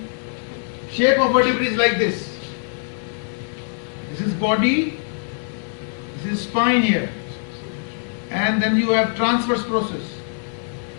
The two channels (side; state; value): right; silent; digital silence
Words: Shape of vertebrae is like this. This is body, this is spine here, and then you have transverse process.